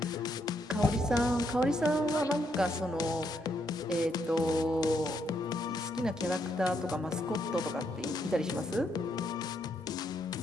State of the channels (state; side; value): normal; both; correlation 0.76